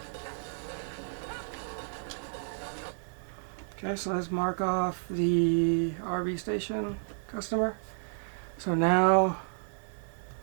Okay, so let's mark off the RV station customer. So now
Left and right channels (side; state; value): left; silent; digital silence